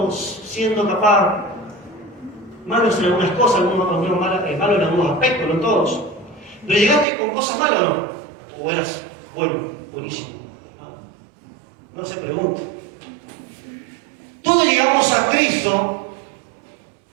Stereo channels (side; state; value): left; drops out; at 7.1 s